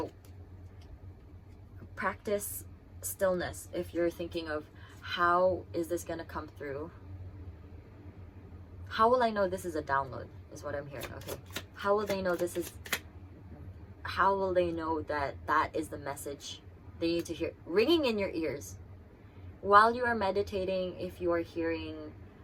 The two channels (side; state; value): both; identical; correlation 1.00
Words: practice stillness if you're thinking of how is this going to come through. How will I know this is a download is what I'm hearing. Okay, how will they know this is, how will they know that that is the message they need to hear ringing in your ears while you are meditating? If you are hearing